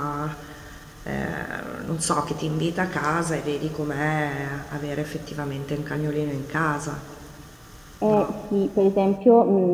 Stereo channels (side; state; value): both; identical; correlation 1.00